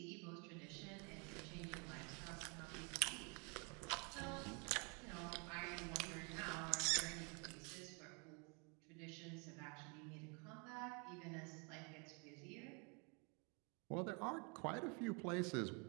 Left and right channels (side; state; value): left; quieter; 33.5 dB